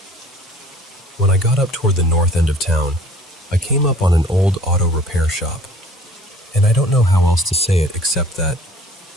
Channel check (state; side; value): normal; both; correlation 0.51